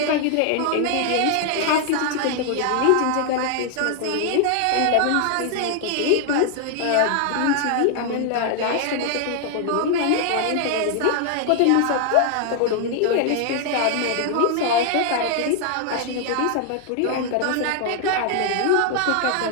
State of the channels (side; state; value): both; different; correlation 0.00